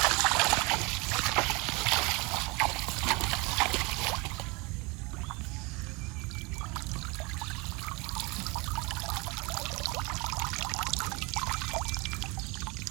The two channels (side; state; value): left; quieter; 27.1 dB